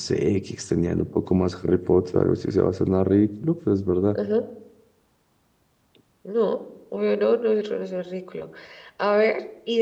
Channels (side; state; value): both; identical; correlation 1.00